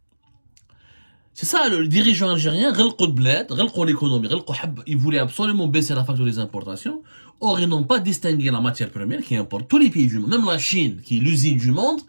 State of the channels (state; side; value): inverted; both; correlation -1.00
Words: C'est ça, le dirigeant algérien, l'économie, il voulait absolument baisser la facture des importations. Or, ils n'ont pas distingué la matière première qui importe tous les pays du monde. Même la Chine, qui est l'usine du monde,